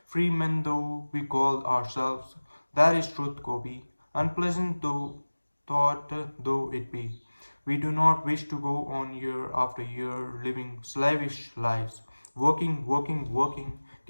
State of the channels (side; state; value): both; inverted; correlation -1.00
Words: Free men though we call ourselves, that is truth, Gobi. Unpleasant though thought though it be. We do not wish to go on year after year living slavish lives, working, working, working,